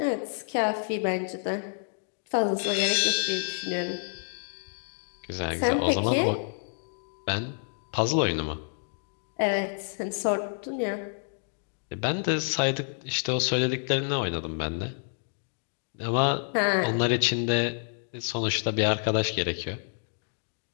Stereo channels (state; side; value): silent; right; digital silence